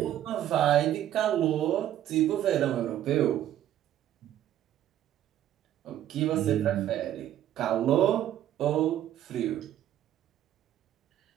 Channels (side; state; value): left; quieter; 11.9 dB